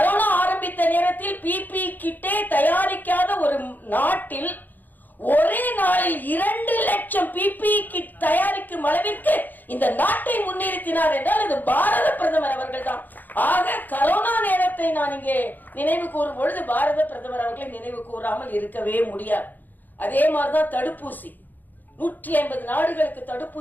ஆரம்பித்த நேரத்தில் பிபி கிட்டே தயாரிக்காத ஒரு நாட்டில் ஒரே நாளில் 2 லட்சம் பிபி கிட் தயாரிக்கும் அளவிற்கு இந்த நாட்டை முன்னிறுத்தினார் என்றால் அது பாரத பிரதமர் அவர்கள் தான். ஆக கரோனா நேரத்தை நான் இங்கே நினைவு கூறும் பொழுது பாரத பிரதமர் அவர்களை நினைவு கூறாமல் இருக்கவே முடியாது. அதே மாதிரிதான் தடுப்பூசி, 150 நாடுகளுக்கு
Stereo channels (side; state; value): right; late; 0.085 ms